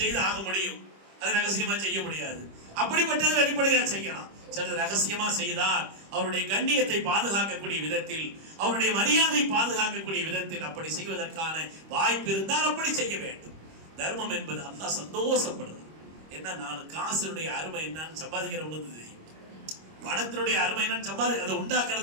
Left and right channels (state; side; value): late; left; 25 ms